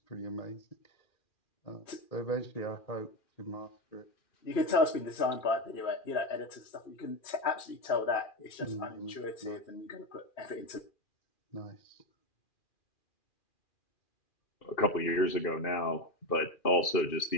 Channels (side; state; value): right; late; 2.4 ms